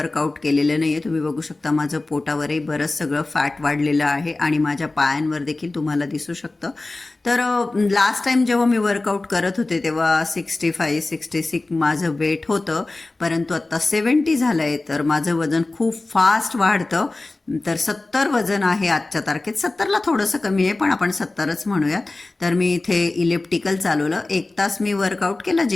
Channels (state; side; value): quieter; right; 3.1 dB